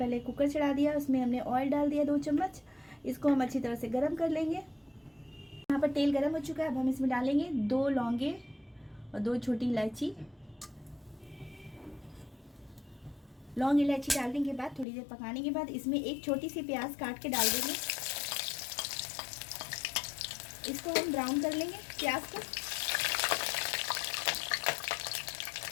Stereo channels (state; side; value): drops out; right; at 14.9 s